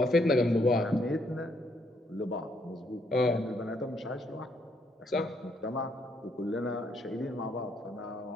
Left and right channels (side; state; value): both; normal; correlation 0.72